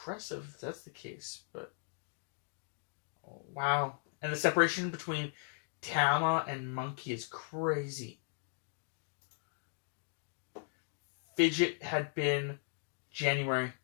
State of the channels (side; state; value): right; silent; 53 dB below the other